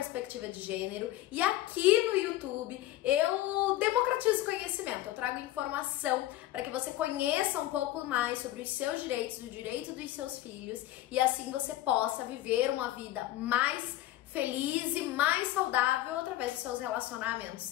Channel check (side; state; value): right; quieter; 15.1 dB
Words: de gênero. E aqui no YouTube eu democratizo conhecimento, eu trago informação para que você conheça um pouco mais sobre os seus direitos, o direito dos seus filhos, e assim você possa viver uma vida mais feliz e mais saudável através dos seus